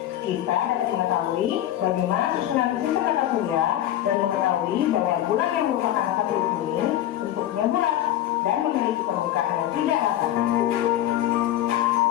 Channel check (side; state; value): right; quieter; 12.7 dB